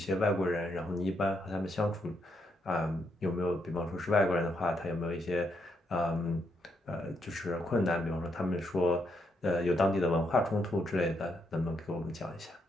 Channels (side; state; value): both; normal; correlation 0.77